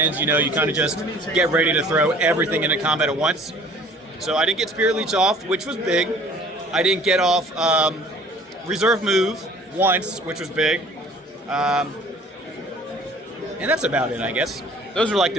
You know, you kind of just get ready to throw everything into combat at once. So I didn't get Spirit Leech off, which was big. I didn't get off Reserve Move once, which was big. And that's about it, I guess. Those are like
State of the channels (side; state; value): both; normal; correlation 0.51